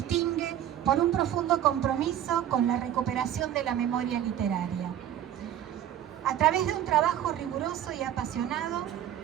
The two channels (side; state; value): left; quieter; 11.0 dB